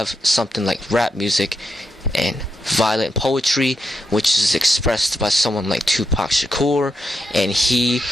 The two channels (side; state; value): both; normal; correlation 0.84